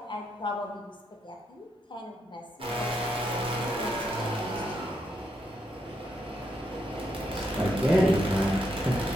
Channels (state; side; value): normal; both; correlation 0.79